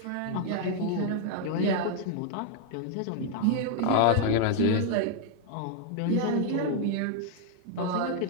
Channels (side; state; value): both; different; correlation 0.00